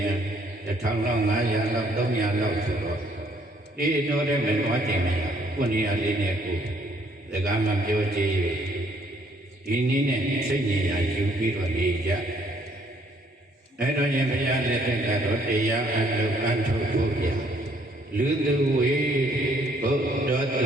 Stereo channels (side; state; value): both; normal; correlation 0.65